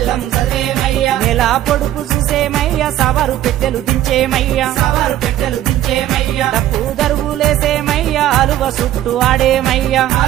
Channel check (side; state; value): left; quieter; 12.9 dB